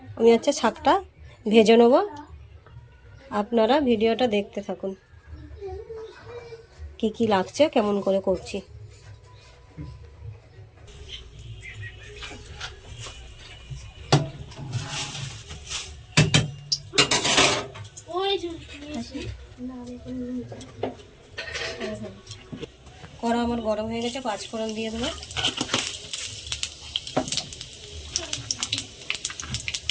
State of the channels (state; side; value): identical; both; correlation 1.00